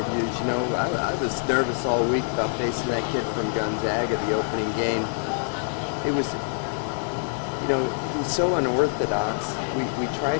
you know, I was nervous all week about facing that kid from Gonzaga, the opening game. It was, you know, he was so unorthodox. We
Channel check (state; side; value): silent; right; digital silence